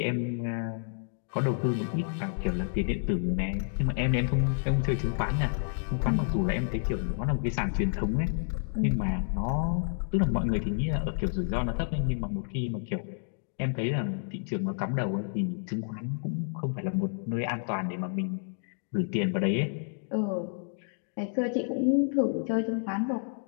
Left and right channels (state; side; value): silent; right; digital silence